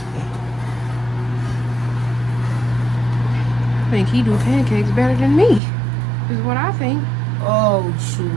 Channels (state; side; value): drops out; left; at 5.6 s